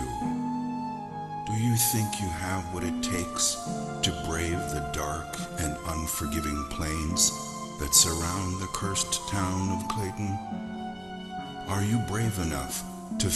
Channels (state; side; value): noise; right; hum, 28 dB below the sound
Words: Do you think you have what it takes to brave the dark and unforgiving plains that surround the cursed town of Clayton? Are you brave enough to